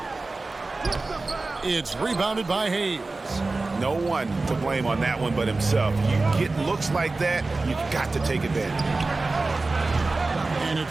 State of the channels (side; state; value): left; quieter; 3.5 dB